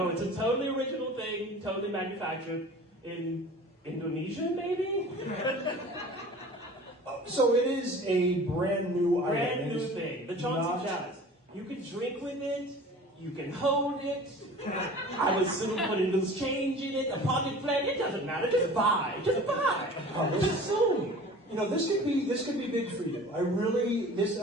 it's a totally original thing, totally manufactured in Indonesia, maybe? So it is a brand new item. Brand new thing. The Chauncey Chalice. You can drink with it. You can hold it. I would soon put a loose change in it, a pocket plant. It doesn't matter. Just buy. Just buy. Just soon. You know, this could be big for you. This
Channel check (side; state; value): both; normal; correlation 0.42